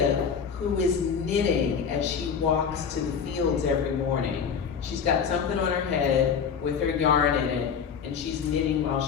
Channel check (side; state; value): right; quieter; 6.7 dB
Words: who is knitting as she walks to the fields every morning. She's got something on her head with her yarn in it, and she's knitting while